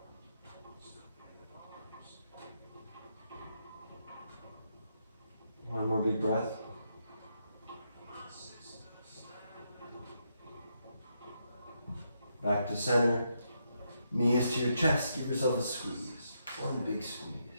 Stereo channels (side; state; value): both; inverted; correlation -0.80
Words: One more big breath. Back to center. Knees to your chest. Give yourself a squeeze. One big squeeze.